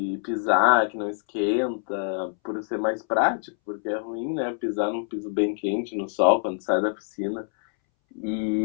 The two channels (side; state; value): right; silent; 61 dB below the other